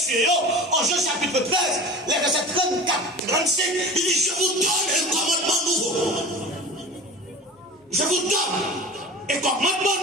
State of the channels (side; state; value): both; normal; correlation 0.36